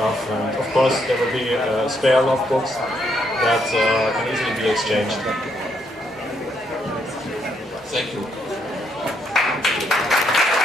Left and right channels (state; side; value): normal; both; correlation 0.75